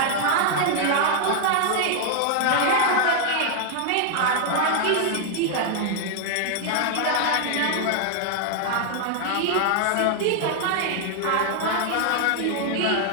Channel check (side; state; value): both; different; correlation 0.00